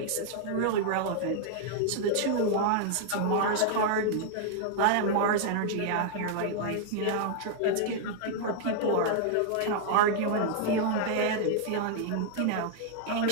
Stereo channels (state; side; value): different; both; correlation -0.01